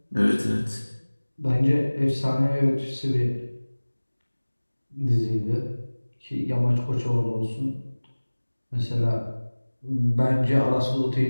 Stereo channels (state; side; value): inverted; both; correlation -1.00